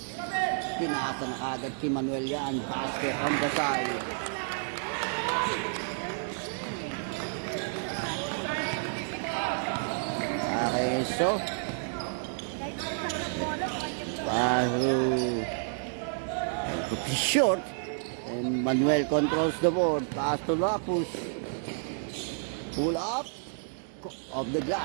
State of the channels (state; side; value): silent; left; digital silence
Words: Tinasa na agad kay Manuel yan. Basket on the side. Okay, so short. And Manuel controls the board. Pass to Lapus. Pull up. Of the